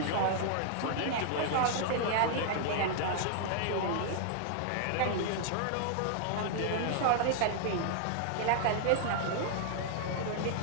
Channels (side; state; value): both; different; correlation -0.01